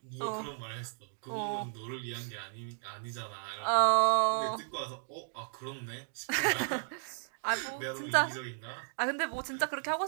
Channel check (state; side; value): silent; left; digital silence